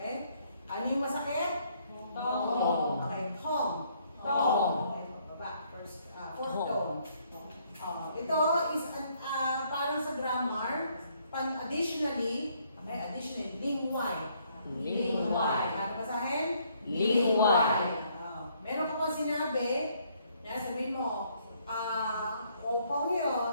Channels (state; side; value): inverted; both; correlation -0.68